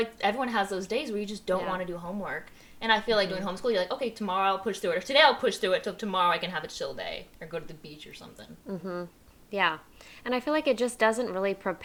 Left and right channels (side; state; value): both; identical; correlation 1.00